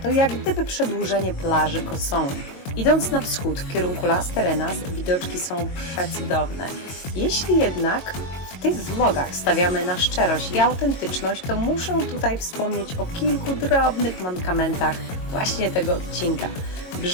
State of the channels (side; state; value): right; late; 22 ms